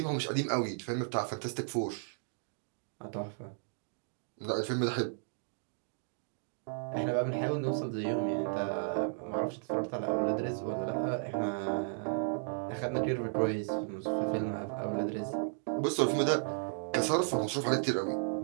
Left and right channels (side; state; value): left; silent; digital silence